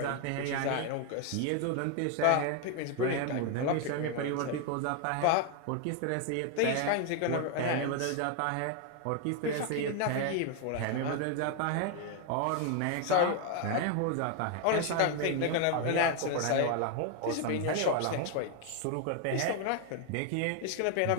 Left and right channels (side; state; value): both; different; correlation 0.01